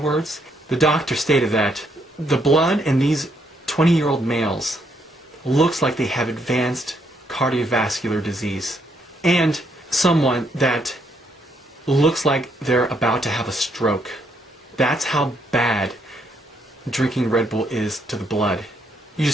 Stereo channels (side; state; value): both; normal; correlation 0.74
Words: the doctor stated that the blood in these 20-year-old males looks like they have advanced cardiovascular disease, and someone that looks like they're about to have a stroke. That's how bad drinking Red Bull is to the blood. You